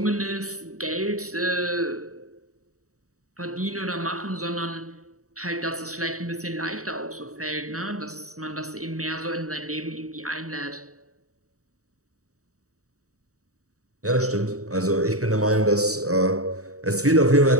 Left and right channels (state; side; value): late; left; 0.65 ms